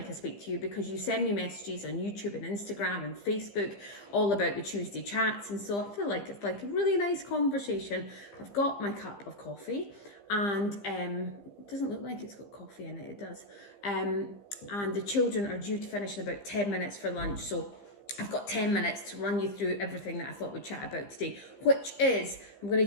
I speak to you because you send me messages on YouTube and Instagram and Facebook all about the Tuesday chats, and so I feel like it's like a really nice conversation. I've got my cup of coffee and it doesn't look like it's got coffee in it. It does. And the children are due to finish in about 10 minutes for lunch, so I've got 10 minutes to run you through everything that I thought we'd chat about today, which is I'm going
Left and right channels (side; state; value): right; late; 15 ms